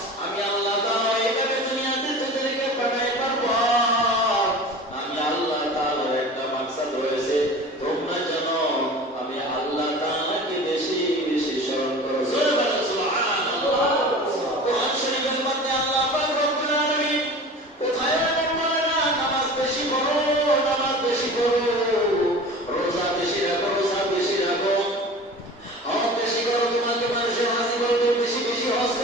আমি আল্লাহ তাআলা এইভাবে দুনিয়াতে তোদেরকে পাঠাইবার পর আমি আল্লাহ তাআলার একটা মাকসাদ রয়েছে, তোমরা যেন আমি আল্লাহ তাআলাকে বেশি বেশি স্মরণ করো। জোরে বলো সুবহানাল্লাহ। কোরআন শরীফের মধ্যে আল্লাহ পাক রব্বুল আলামিন কোথায় বলে না, নামাজ বেশি পড়ো, নামাজ বেশি পড়ো, রোজা বেশি রাখো, রোজা বেশি রাখো, হজ বেশি করো, তোমাকে মানুষের হাসি করবে, বেশি বেশি হজ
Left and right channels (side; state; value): both; normal; correlation 0.38